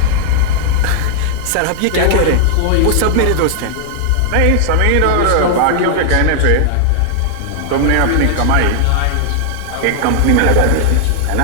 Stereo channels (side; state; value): both; different; correlation 0.00